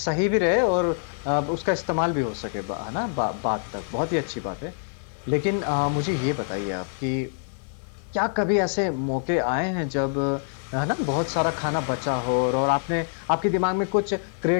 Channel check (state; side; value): silent; right; 61 dB below the other